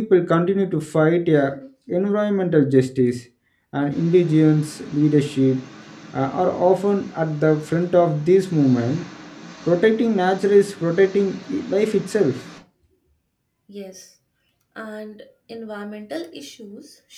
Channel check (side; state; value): both; identical; correlation 1.00